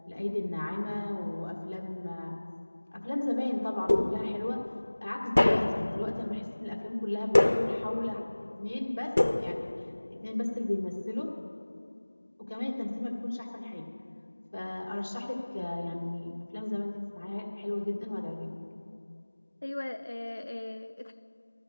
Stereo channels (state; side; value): inverted; both; correlation -1.00